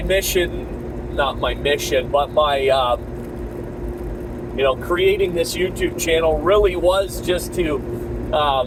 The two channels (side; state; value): both; identical; correlation 1.00